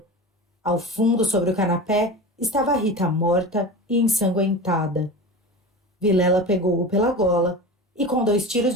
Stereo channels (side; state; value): both; normal; correlation 0.30